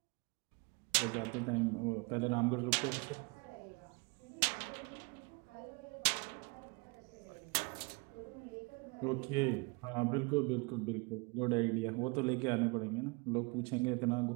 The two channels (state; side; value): quieter; left; 29.4 dB